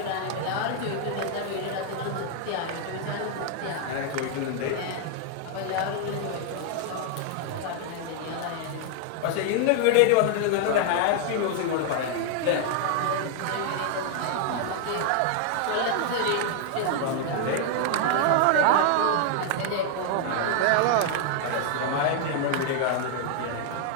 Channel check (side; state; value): both; different; correlation 0.00